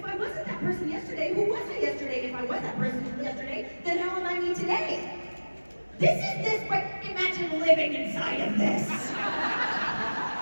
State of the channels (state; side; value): inverted; both; correlation -1.00